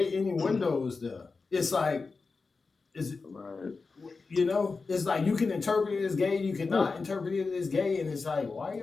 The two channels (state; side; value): quieter; right; 4.3 dB